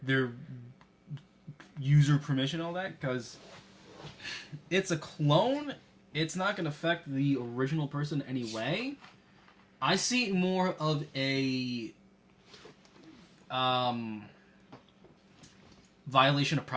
user permission, all that, because it's a clone. It's not gonna affect the original person anyway. I see it more of a violation of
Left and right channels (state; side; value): identical; both; correlation 1.00